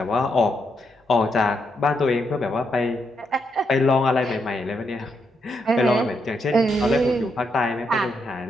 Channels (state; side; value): normal; both; correlation 0.79